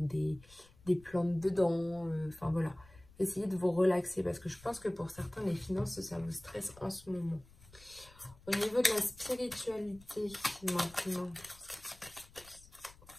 des plantes dedans. Enfin voilà, essayez de vous relaxer parce que je pense que pour certains, les finances, ça vous stresse en ce moment. Au niveau de la spiritualité maintenant.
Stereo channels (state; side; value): noise; left; rumble, 24 dB below the sound